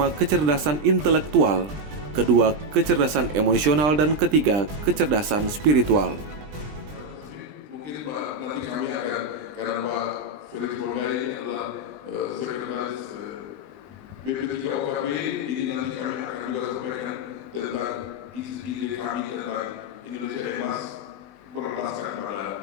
kecerdasan intelektual, kedua kecerdasan emosional, dan ketiga kecerdasan spiritual. Mungkin nanti kami akan, karena Pak Felix Borgai ini adalah sekretaris BP3OKB, ini nanti kami akan juga sampaikan tentang ide kami tentang Indonesia Emas berlandaskan pada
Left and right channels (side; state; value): left; late; 20 ms